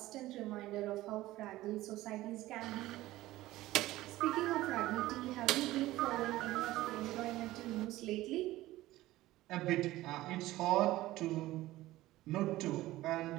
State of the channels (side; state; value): left; quieter; 16.7 dB